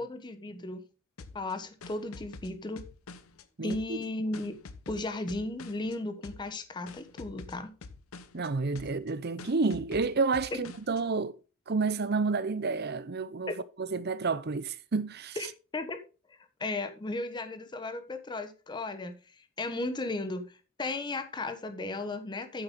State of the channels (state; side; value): normal; both; correlation 0.23